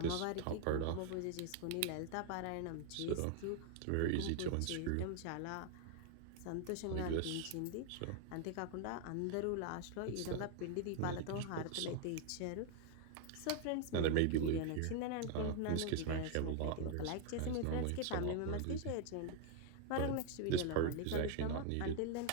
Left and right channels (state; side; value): different; both; correlation 0.00